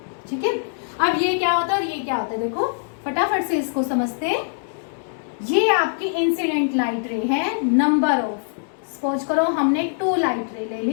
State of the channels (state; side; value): silent; right; digital silence